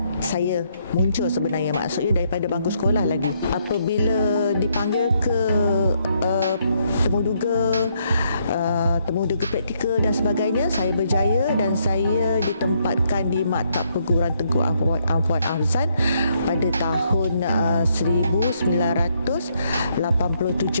saya muncul sebenarnya, maksudnya daripada bangku sekolah lagi. Apabila dipanggil ke temuduga praktikal dan sebagainya, saya berjaya dan saya ditempatkan di maktab perguruan Tengku Afwan Afzan pada tahun 1987.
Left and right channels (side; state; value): both; inverted; correlation -0.73